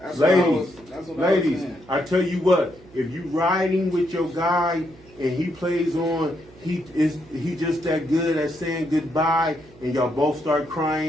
what I ladies, was- that's what I was ladies, saying. I tell you what, if you riding with your guy and he plays on, he just that good at saying goodbye, and y'all both start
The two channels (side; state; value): right; noise; hum, 25 dB below the sound